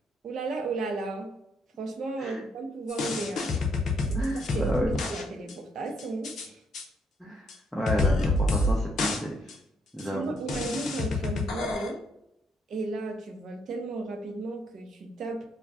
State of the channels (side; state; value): both; normal; correlation 0.72